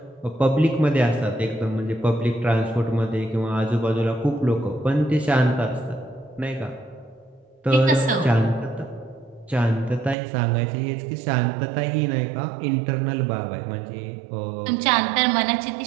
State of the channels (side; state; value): left; drops out; at 10.2 s